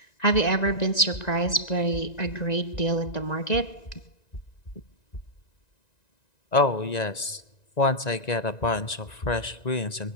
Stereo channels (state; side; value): late; right; 1.9 ms